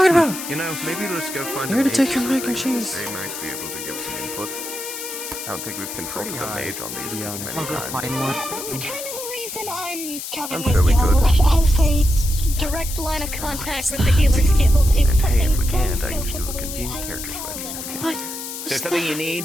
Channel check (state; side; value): noise; left; hiss, 8 dB below the sound